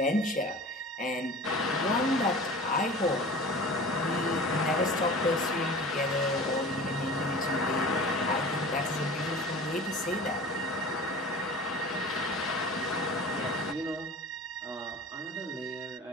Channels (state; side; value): normal; both; correlation 0.38